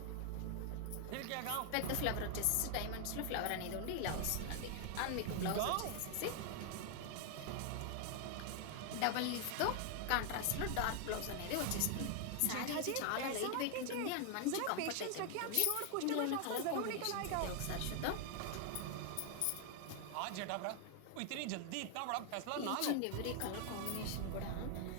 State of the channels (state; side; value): different; both; correlation 0.00